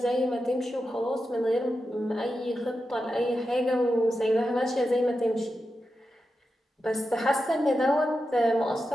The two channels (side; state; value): both; normal; correlation 0.90